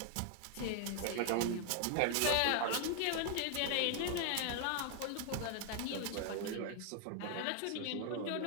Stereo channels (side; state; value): both; different; correlation 0.00